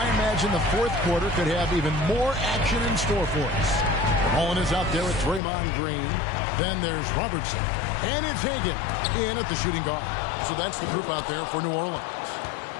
imagine the fourth quarter could have even more action in store for us. Holland is out there with Draymond Green. Then there's Robertson. And it's Hagan in at the shooting guard. So that's the group out there for New Orleans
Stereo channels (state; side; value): drops out; right; at 5.4 s